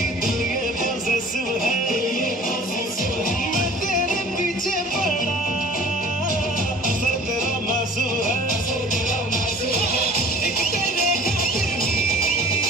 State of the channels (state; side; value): normal; both; correlation 0.46